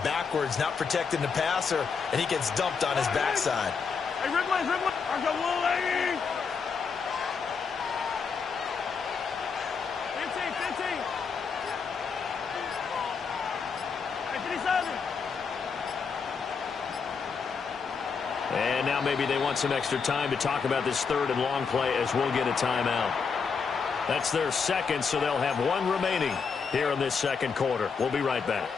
backwards, not protecting the passer, and he gets dumped on his backside. Hey, Ridley, Ridley. 15. Hey, 57. And now maybe they want some extra time to talk about this 3rd and long play, as we'll get a timeout. That's their second, so they'll have one remaining here in this second quarter. We'll be right back.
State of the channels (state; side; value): quieter; right; 5.7 dB